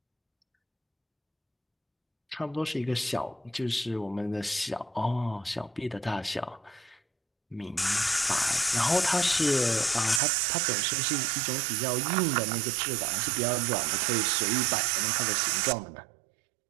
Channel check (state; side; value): drops out; left; at 10.2 s